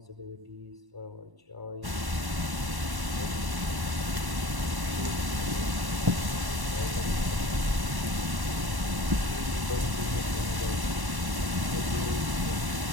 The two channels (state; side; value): late; left; 1.1 ms